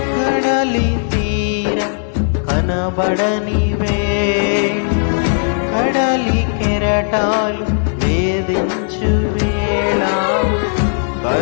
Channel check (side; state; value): right; silent; digital silence